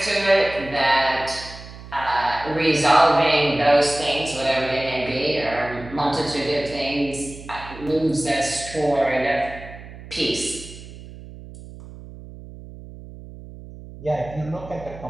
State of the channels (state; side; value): noise; right; hum, 15 dB below the sound